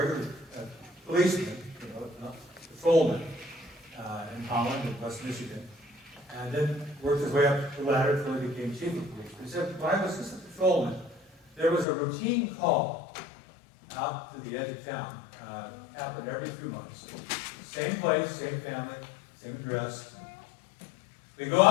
policeman, patrolman in Holland and West Michigan, and then worked his way up the ladder until he became chief of police. He said, when I was just a patrolman, there was a routine call out to the edge of town. Happened every few months. Same place, same family, same address. We go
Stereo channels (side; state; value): right; drops out; at 11.9 s